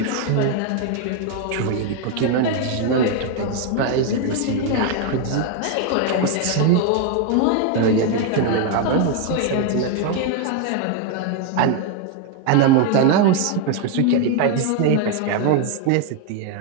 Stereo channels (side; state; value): both; different; correlation 0.01